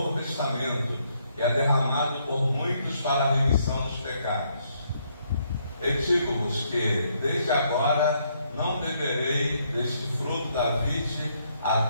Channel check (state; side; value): inverted; both; correlation -0.72